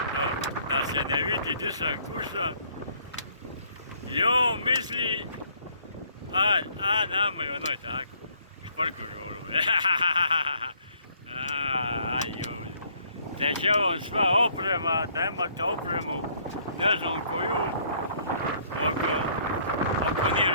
Da se ne vidi gdje sam kušan. Jo, misli, nama je onoj tako, šparkužu ono. Te će vam sva oprema, da imate opremu, ne znam koju, oko nije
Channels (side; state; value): both; inverted; correlation -0.64